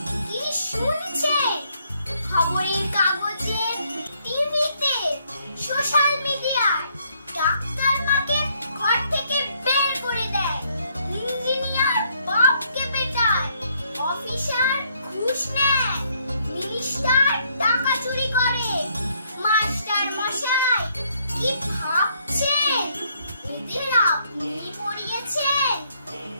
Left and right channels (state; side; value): inverted; both; correlation -0.70